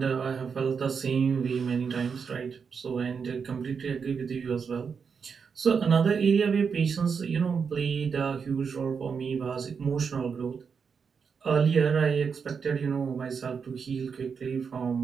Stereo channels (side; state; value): left; quieter; 6.0 dB